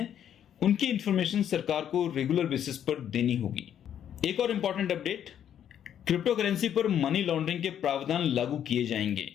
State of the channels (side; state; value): right; quieter; 9.7 dB